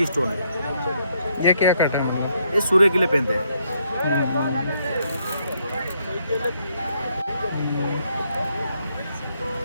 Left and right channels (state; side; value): inverted; both; correlation -0.74